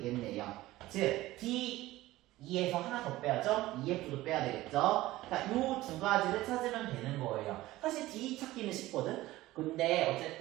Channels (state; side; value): quieter; left; 17.2 dB